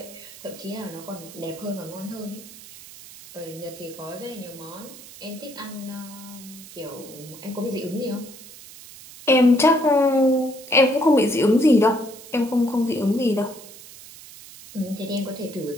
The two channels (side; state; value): right; noise; hiss, 17 dB below the sound